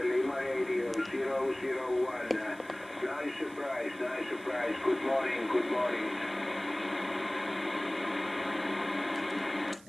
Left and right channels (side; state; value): right; noise; hiss, 24 dB below the sound